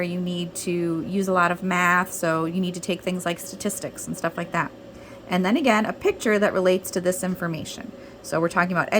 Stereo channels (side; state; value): both; identical; correlation 1.00